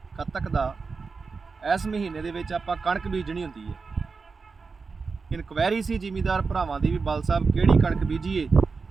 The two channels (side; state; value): left; quieter; 4.7 dB